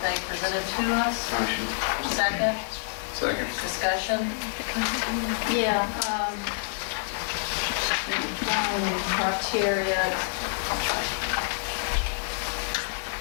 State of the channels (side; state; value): right; silent; digital silence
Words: presented to us? Motion. Second, Second. discussion? Yeah, criteria,